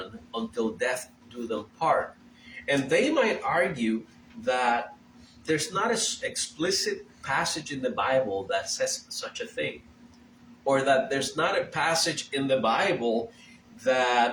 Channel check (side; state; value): both; identical; correlation 1.00